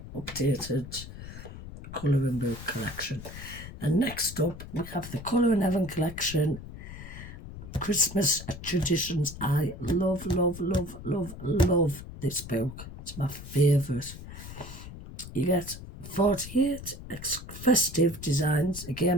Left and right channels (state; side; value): noise; left; rumble, 12 dB below the sound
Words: updated colouring book collection. And next up, we have the Colour in Heaven collection. Christmas traditions. I love, love, love, love, love this book. It's my favourite. You get 48 festive designs,